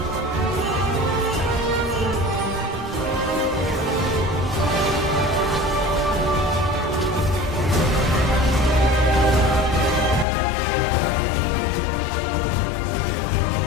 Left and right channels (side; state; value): right; drops out; at 10.2 s